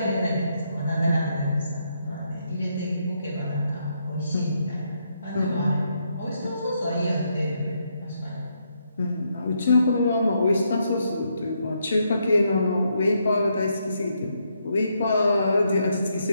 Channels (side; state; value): both; inverted; correlation -0.77